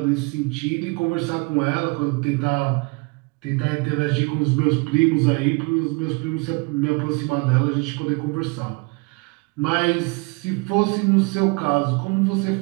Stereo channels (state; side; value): quieter; left; 29.5 dB